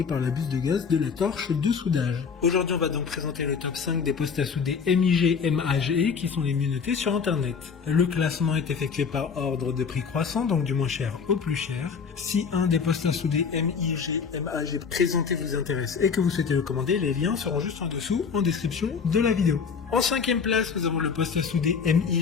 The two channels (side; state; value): right; quieter; 6.0 dB